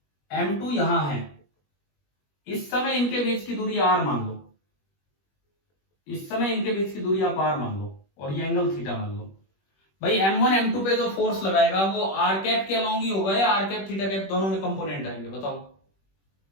M2 यहां है, इस समय इनके बीच की दूरी r मान लो, इस समय इनके बीच की दूरी आप r मान लो, और ये एंगल थीटा मान लो। भाई M1 M2 पे जो फोर्स लगाएगा वो r कैप के अलोंग ही होगा या r कैप थीटा कैप दोनों में कंपोनेंट आएंगे, बताओ?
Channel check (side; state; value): right; late; 21 ms